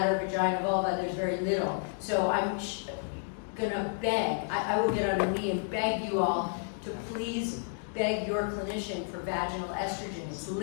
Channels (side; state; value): right; silent; digital silence